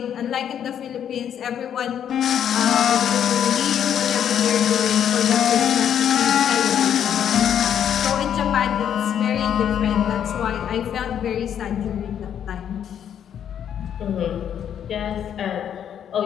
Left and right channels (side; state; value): right; quieter; 9.2 dB